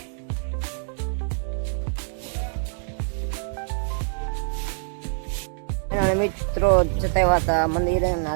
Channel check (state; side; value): silent; left; digital silence